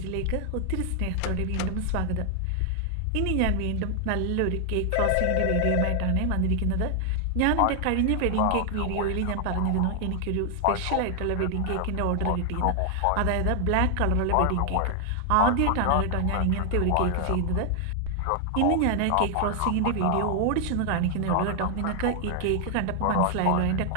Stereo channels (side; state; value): both; different; correlation 0.00